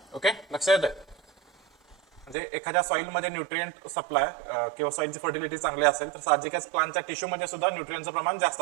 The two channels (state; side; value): drops out; left; at 2.4 s